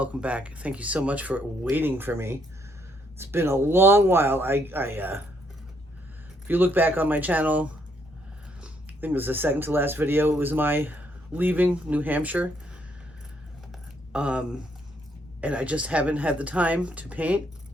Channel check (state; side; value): normal; both; correlation 0.71